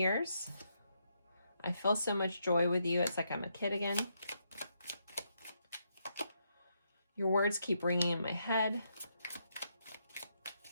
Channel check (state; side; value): inverted; both; correlation -0.79